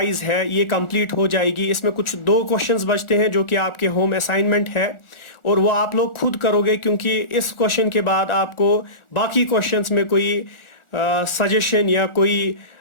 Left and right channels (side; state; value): right; late; 1.4 ms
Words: है ये कंप्लीट हो जाएगी। इसमें कुछ दो क्वेश्चंस बचते हैं जो कि आपके होम असाइनमेंट है, और वो आप लोग खुद करोगे, क्योंकि इस क्वेश्चन के बाद आपको बाकी क्वेश्चंस में कोई सजेशन या कोई